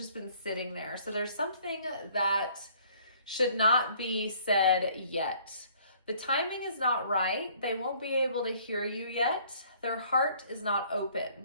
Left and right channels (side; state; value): both; inverted; correlation -0.58